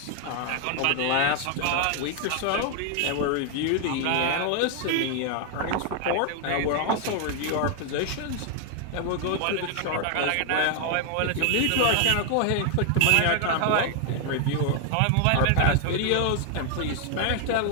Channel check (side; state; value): both; different; correlation 0.00